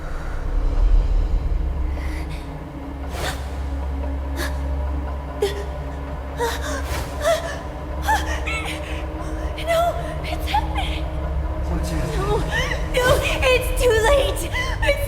No, it's happening. What's happening? No, it's too late.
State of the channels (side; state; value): both; identical; correlation 1.00